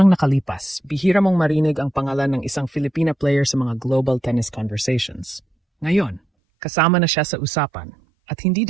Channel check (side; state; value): left; drops out; at 6.2 s